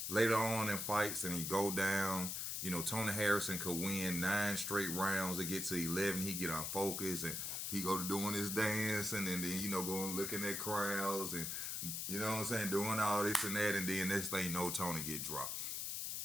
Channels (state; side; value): noise; left; hiss, 2 dB below the sound